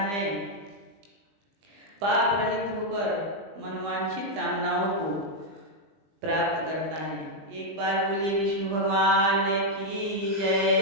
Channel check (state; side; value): late; left; 20 ms